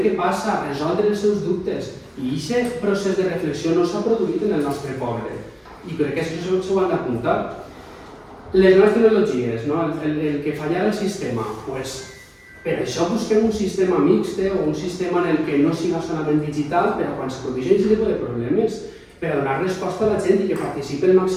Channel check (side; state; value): both; identical; correlation 1.00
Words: què passa, resoldre els seus dubtes. I aquest procés de reflexió no s'ha produït en el nostre poble. I crec que això s'ho han d'apuntar. Les noves tecnologies, el que falla el sistema, per això busquem un sistema mixt o un sistema en el que no sigui solament digital, però quan se produeixen aquest tipus de problemes, per a donar resposta a la gent i que participi el